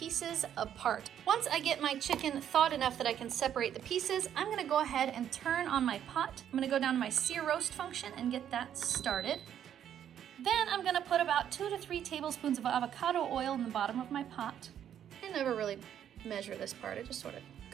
apart. Once I get my chicken thawed enough that I can separate the pieces, I'm gonna go ahead and turn on my pot. I'm gonna go down to my sear roast function and get that started. Then I'm gonna put about 2 to 3 tablespoons of avocado oil in the bottom of my pot. I never really measure this part, I just sort of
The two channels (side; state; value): left; quieter; 9.8 dB